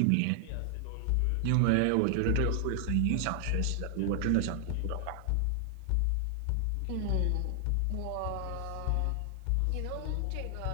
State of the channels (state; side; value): different; both; correlation 0.00